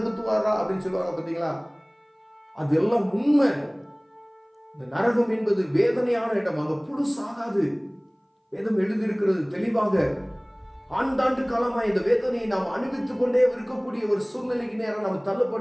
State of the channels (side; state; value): both; identical; correlation 1.00